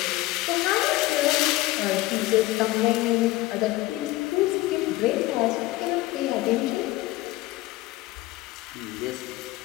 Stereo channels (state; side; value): quieter; right; 18.3 dB